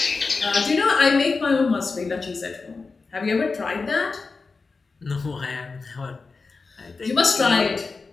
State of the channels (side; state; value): right; quieter; 4.3 dB